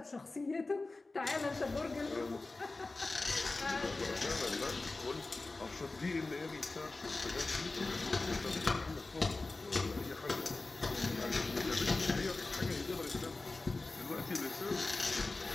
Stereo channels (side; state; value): right; quieter; 3.3 dB